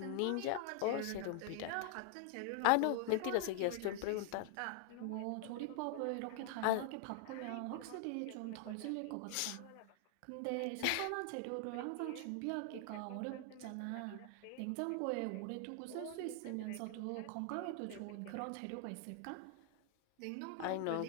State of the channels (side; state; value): both; different; correlation 0.00